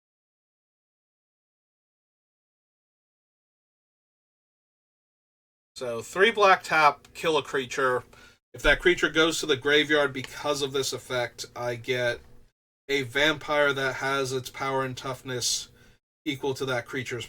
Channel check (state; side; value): identical; both; correlation 1.00